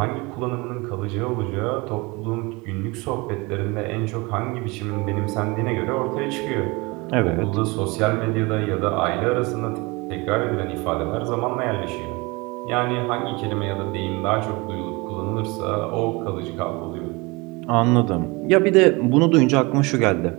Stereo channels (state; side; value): quieter; left; 25.5 dB